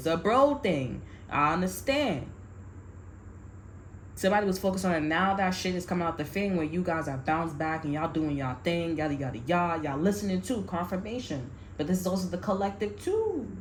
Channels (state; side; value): identical; both; correlation 1.00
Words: a bro thing. I understand. Somebody was focused on it. Now that shit is coming out the thing where you guys are bounced back and y'all doing y'all thing, yada yada yada. Y'all listening too, confirmation. But this is also the collective too.